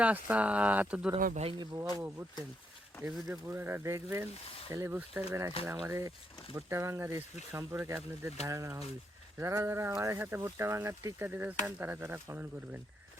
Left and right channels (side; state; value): both; normal; correlation 0.78